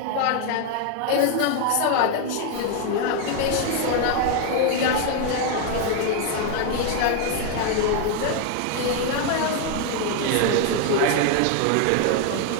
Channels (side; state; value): both; different; correlation 0.01